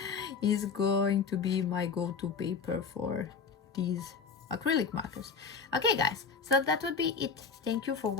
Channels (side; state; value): right; quieter; 5.5 dB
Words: is going to be my go-to paper for these acrylic markers. Okay guys, so that would be it. Thank you for